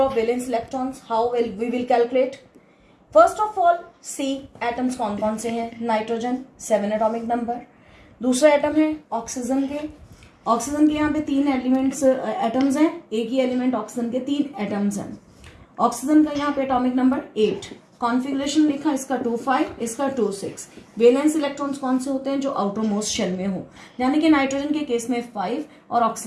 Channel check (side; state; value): both; identical; correlation 1.00